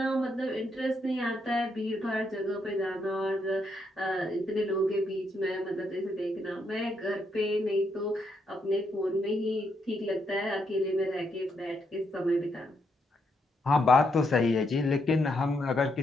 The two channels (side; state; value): both; normal; correlation 0.78